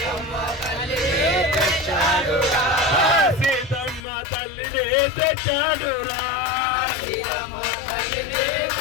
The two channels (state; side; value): drops out; right; at 4.0 s